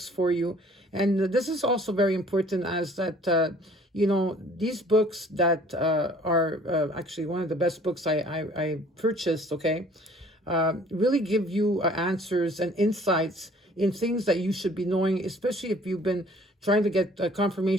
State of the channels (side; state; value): both; normal; correlation 0.54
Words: for you. And this is also very important, as that you know, these books that are actually one of the best books I purchased, okay, really give you answers and insights in things that you should be knowing, especially if you've been trying to get